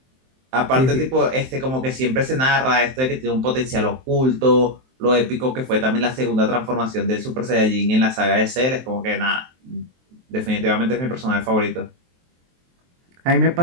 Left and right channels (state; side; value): late; left; 23 ms